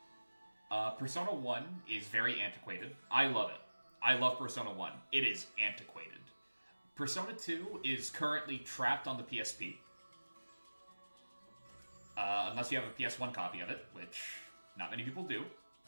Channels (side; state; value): both; inverted; correlation -1.00